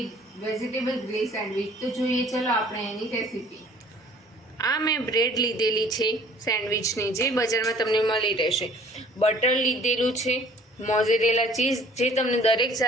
વેજીટેબલ ગ્રીલ સેન્ડવિચ. તો જોઈએ ચલો આપણે એની રેસીપી. આ મેં બ્રેડ લીધેલી છે સેન્ડવિચની, જે બજારમાં તમને મળી રહેશે. બટર લીધેલું છે, મોઝરેલા ચીઝ, જે તમને દરેક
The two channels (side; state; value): both; normal; correlation 0.53